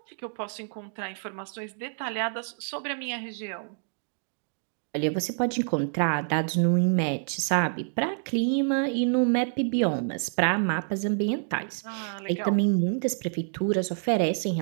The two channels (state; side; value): silent; left; digital silence